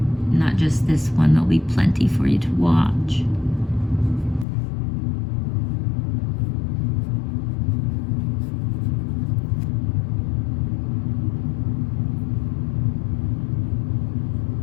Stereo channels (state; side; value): drops out; right; at 4.5 s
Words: not just this one, there'll be plenty for you to watch.